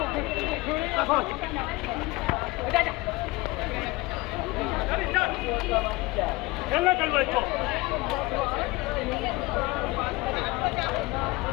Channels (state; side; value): quieter; right; 21.8 dB